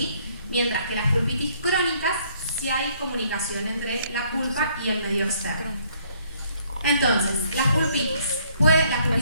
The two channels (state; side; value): inverted; both; correlation -0.65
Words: Mientras que las pulpitis crónicas sí hay comunicación entre la pulpa y el medio externo. Entonces, las pulpitis